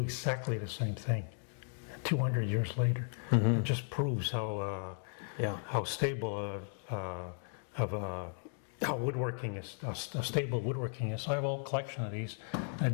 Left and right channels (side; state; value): right; silent; 54 dB below the other